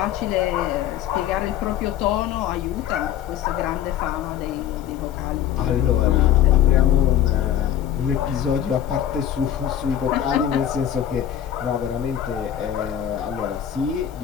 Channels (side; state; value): right; quieter; 10.5 dB